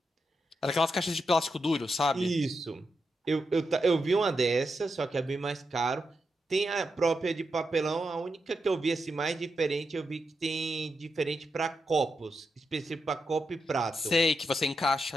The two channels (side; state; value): both; normal; correlation 0.86